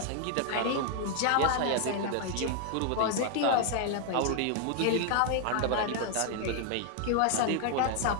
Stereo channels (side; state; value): both; different; correlation 0.00